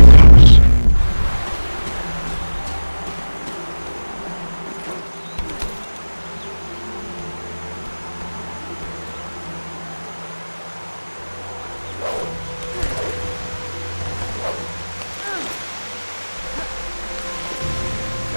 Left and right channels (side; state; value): both; inverted; correlation -1.00